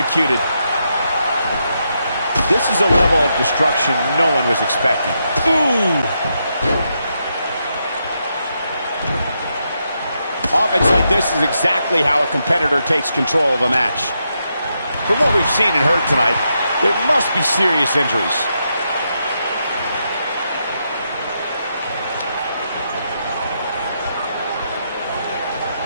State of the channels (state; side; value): inverted; both; correlation -0.82